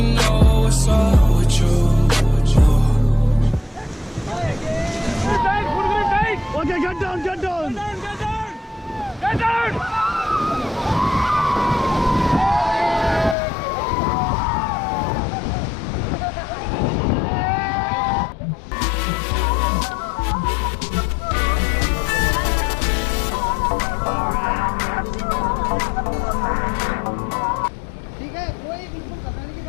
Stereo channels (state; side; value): drops out; right; at 13.4 s